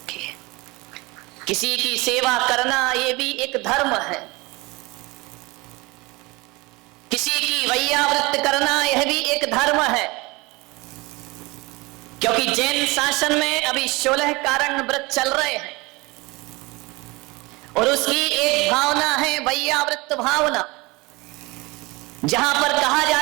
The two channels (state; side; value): quieter; left; 24.0 dB